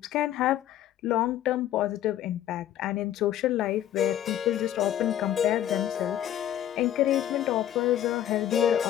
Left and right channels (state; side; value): quieter; right; 11.5 dB